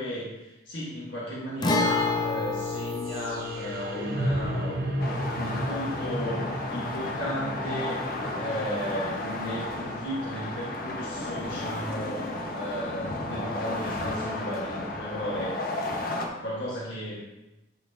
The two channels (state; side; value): normal; both; correlation 0.37